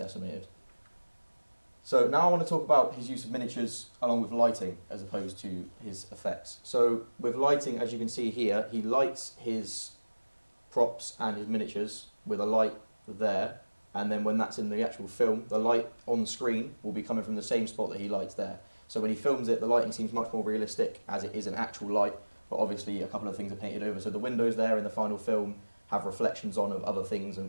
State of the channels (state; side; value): inverted; both; correlation -1.00